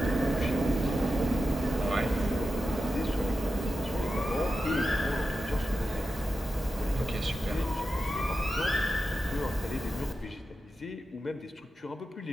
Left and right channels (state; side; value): normal; both; correlation 0.91